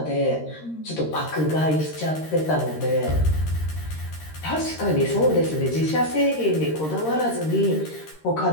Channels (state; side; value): late; right; 13 ms